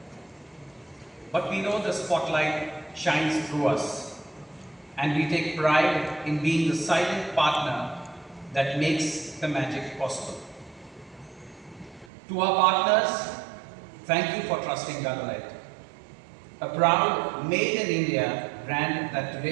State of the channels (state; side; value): drops out; left; at 12.1 s